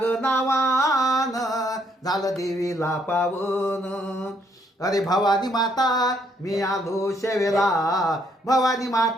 ग नावान झालं देवीला पावन अरे भवानी माता मी आलो शेवेला भवानी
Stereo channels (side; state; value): both; normal; correlation 0.70